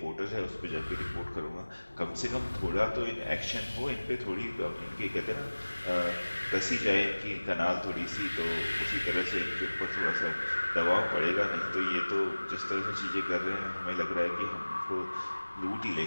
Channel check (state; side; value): inverted; both; correlation -1.00